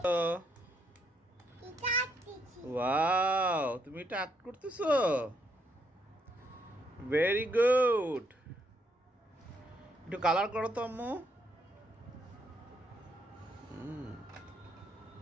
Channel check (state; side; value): normal; both; correlation 0.74